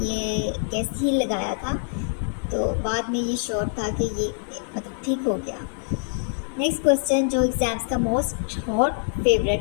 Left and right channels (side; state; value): right; silent; digital silence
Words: ये गैस ही लगाया था। तो बाद में ये श्योर था कि ये मतलब ठीक हो गया। नेक्स्ट क्वेश्चन जो एग्ज़ाम्स का मोस्ट हॉट